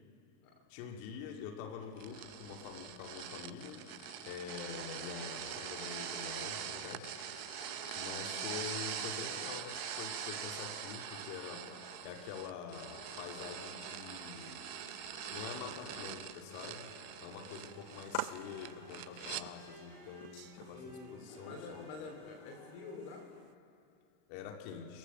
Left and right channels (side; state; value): right; late; 39 ms